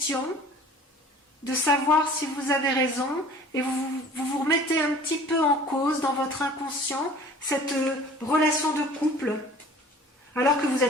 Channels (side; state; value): both; normal; correlation 0.47